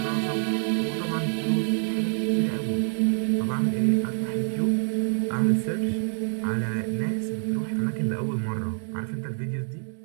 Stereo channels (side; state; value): left; silent; 56 dB below the other